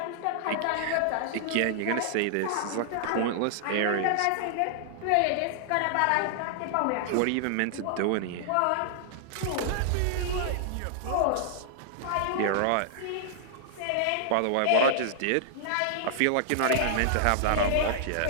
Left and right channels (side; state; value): both; different; correlation -0.01